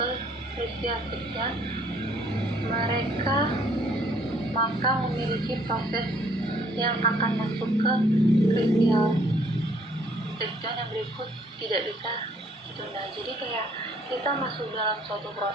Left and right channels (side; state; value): both; normal; correlation 0.62